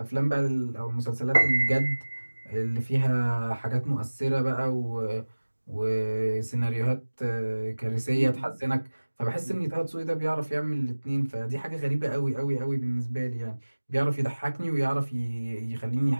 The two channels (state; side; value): inverted; both; correlation -1.00